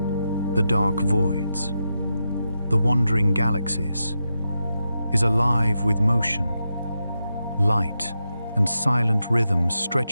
the dark voids, the wandering galaxies, is alive with motion, light, and silent rhythms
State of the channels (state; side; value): inverted; both; correlation -0.87